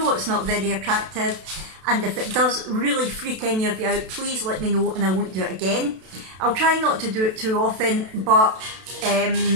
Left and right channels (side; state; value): left; late; 32 ms